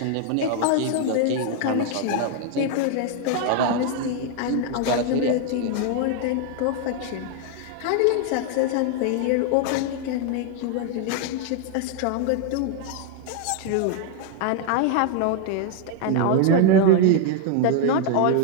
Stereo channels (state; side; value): different; both; correlation 0.00